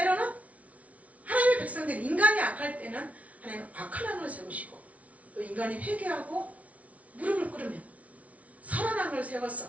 하나님의 백성들, 인간이 악할 때는 하나님은 악한 왕을 세우시고 또 인간이 회개하고 무릎을 꿇으면 선한 왕을 세워서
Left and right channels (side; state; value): left; late; 0.067 ms